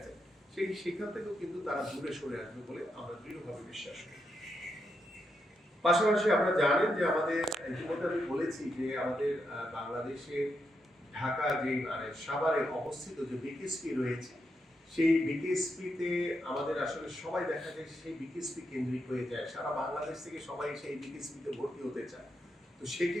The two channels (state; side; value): normal; both; correlation 0.83